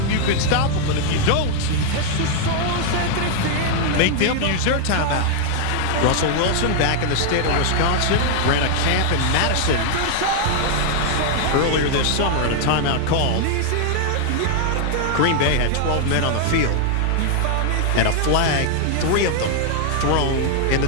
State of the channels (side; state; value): both; different; correlation 0.00